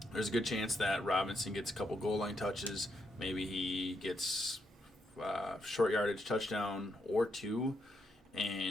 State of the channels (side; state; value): both; normal; correlation 0.80